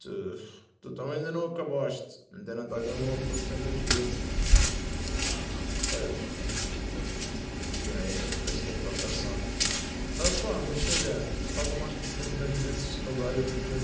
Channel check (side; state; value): both; identical; correlation 1.00